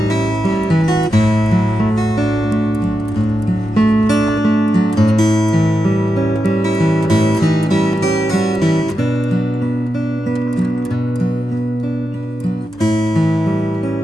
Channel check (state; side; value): normal; both; correlation 0.88